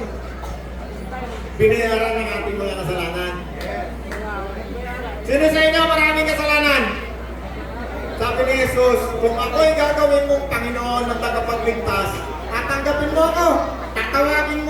Binayaran ng ating mga kasalanan. Sino sa inyo maraming kasalanan? Sabi ni Jesus, kung ako'y gagawin mong Panginoon ng tagapagligtas, tatanggapin mo ako, tatawagin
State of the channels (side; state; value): both; identical; correlation 1.00